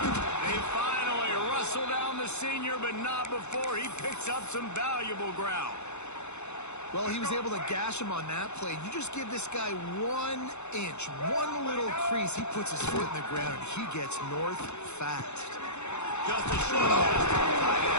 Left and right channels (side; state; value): right; late; 0.82 ms